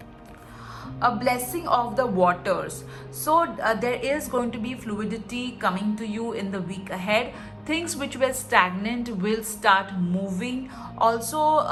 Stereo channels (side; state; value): both; identical; correlation 1.00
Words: A blessing of the waters. So there is going to be fluidity coming to you in the week ahead. Things which were stagnant will start moving. Also,